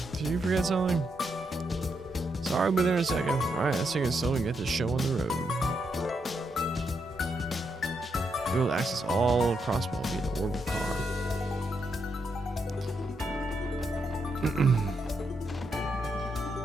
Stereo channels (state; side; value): normal; both; correlation 0.80